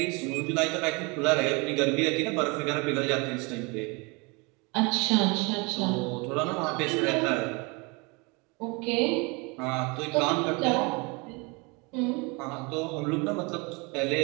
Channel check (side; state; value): left; quieter; 28.9 dB